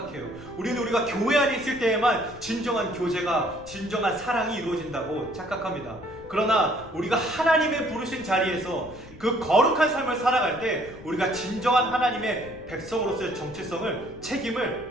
우리는 우리가 교회 안에 있을 때에만 진정한 교제가, 진정한 사랑이 이루어진다고 착각합니다. 그러나 우리가 하나님의 부르신 자리에서 그 거룩한 삶을 살아갈 때 우리가 진정한 하나님의 백성으로서의 정체성을,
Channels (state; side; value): noise; left; rumble, 20 dB below the sound